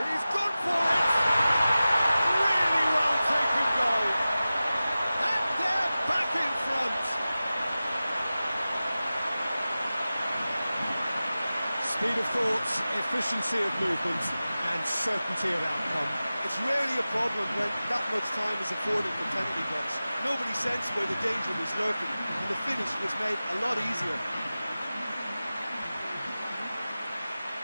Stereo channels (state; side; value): inverted; both; correlation -0.96